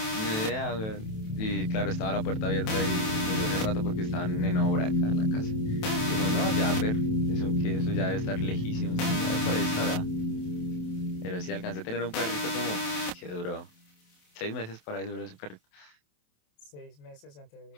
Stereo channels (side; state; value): right; late; 27 ms